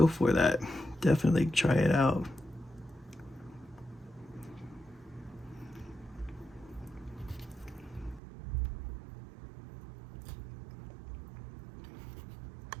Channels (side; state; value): left; drops out; at 8.2 s